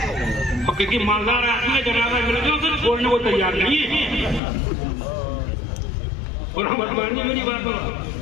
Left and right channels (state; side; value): drops out; right; at 4.4 s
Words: और क्योंकि मालदार आदमी है, जनाजा मिल गया उसे छोड़ने को तैयार नहीं है। बदमानी मेरी बात हो,